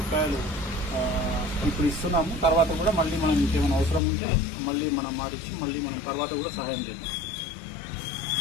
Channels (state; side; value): drops out; right; at 4.0 s